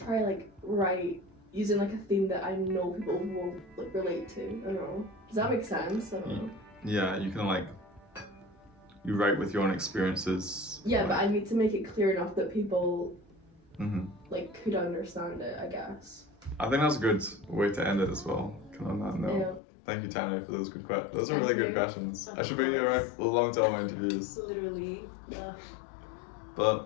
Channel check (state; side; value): drops out; right; at 19.6 s